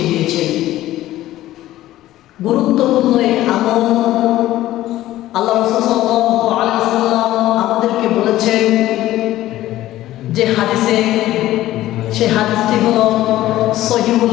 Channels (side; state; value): right; quieter; 14.9 dB